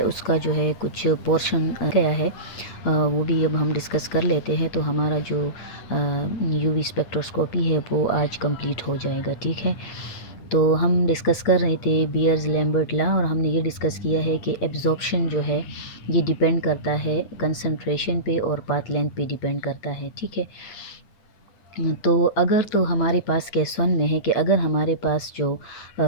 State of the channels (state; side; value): late; right; 9.0 ms